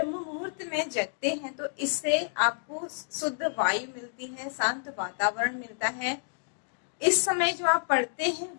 मुहूर्त में जगते हैं तो इससे आपको शुद्ध वायु मिलती है, शांत वातावरण मिलता है। इस समय जो आप पढ़ते हैं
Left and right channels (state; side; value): silent; right; digital silence